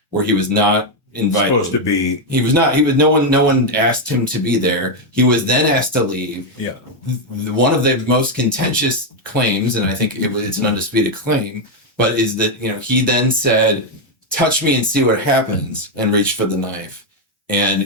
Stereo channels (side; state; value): both; normal; correlation 0.03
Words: where he was not invited. Supposed to be. No one asked him to be there. He was then asked to leave. Yeah. One of the most contentious claims, and I think it's an undisputed claim, but is that, he then said, touch me and see what happens, and reached for the knife. And,